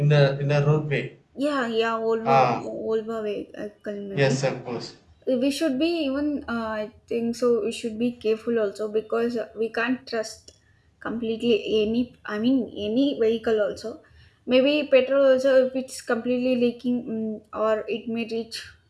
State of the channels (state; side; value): identical; both; correlation 1.00